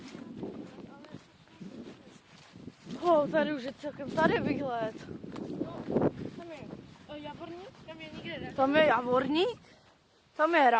Tady už je celkem tady výhled. Tam je Javorník, tam je nikde ne. Tam je Javorník, tam je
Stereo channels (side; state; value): both; identical; correlation 1.00